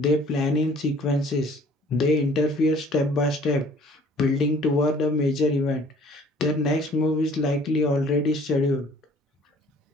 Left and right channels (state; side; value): normal; both; correlation 0.54